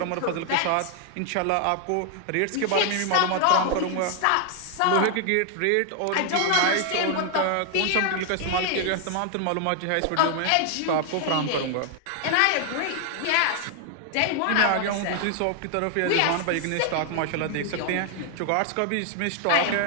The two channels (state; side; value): different; both; correlation 0.00